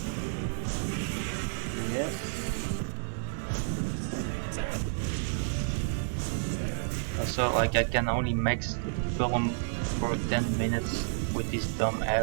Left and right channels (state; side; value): silent; left; digital silence